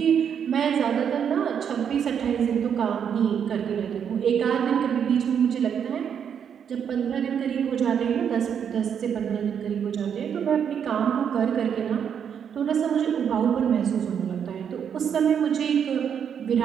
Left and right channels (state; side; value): quieter; left; 8.0 dB